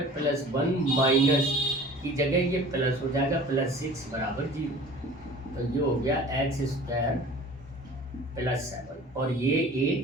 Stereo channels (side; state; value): both; normal; correlation 0.45